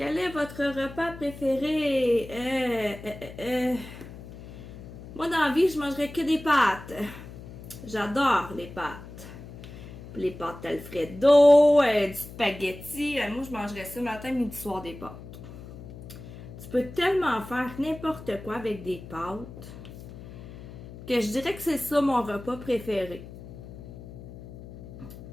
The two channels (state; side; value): noise; left; hum, 14 dB below the sound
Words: est votre repas préféré? Moi, dans la vie, je mangerais que des pâtes. J'adore les pâtes. Les pâtes Alfredo, du spaghetti. Moi, je mangerais ça matin, midi, soir des pâtes. Tu peux tellement faire n'importe quoi avec des pâtes que je dirais que c'est ça mon repas préféré.